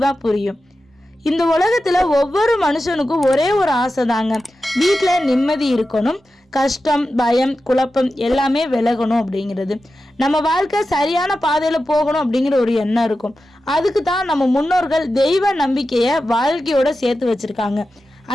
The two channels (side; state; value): both; normal; correlation 0.92